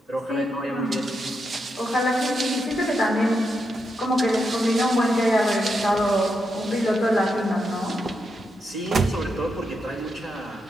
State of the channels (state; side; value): normal; both; correlation 0.83